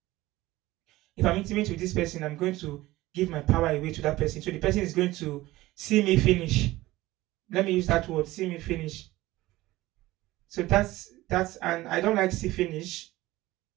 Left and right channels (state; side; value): quieter; left; 17.8 dB